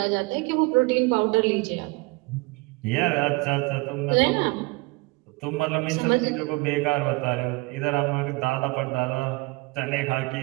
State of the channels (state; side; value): quieter; left; 25.3 dB